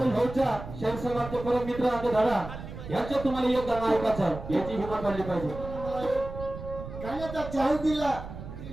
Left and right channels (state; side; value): noise; right; rumble, 11 dB below the sound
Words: भाऊच्या शहर समाजचे परम मित्र आमचे दादा यांच्या तुम्हाला योगदान ऐकायचं याची हिंमत वाढली पाहिजे. गाण्याचा चाहूल दिला